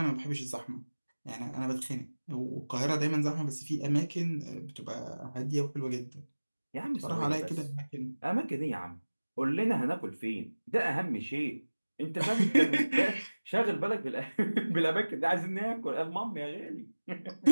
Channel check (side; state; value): both; inverted; correlation -1.00